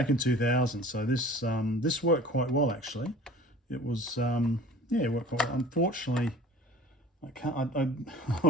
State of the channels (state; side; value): normal; both; correlation 0.44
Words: in 2000. So this worked quite well actually. It was it worked quite well. Unfortunately, I